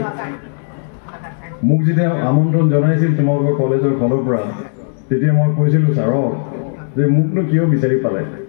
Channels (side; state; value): right; silent; digital silence